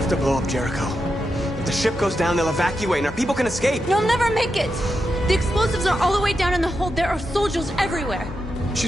to blow up Jericho. If the ship goes down, they'll evacuate and our people can escape. You'll never make it! The explosives are all the way down in the hold. There are soldiers everywhere.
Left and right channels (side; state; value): both; normal; correlation 0.87